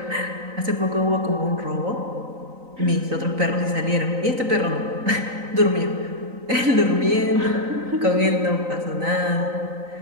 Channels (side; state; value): left; late; 3.9 ms